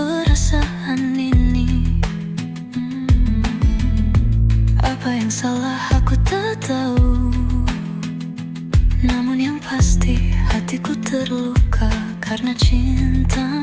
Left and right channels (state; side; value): identical; both; correlation 1.00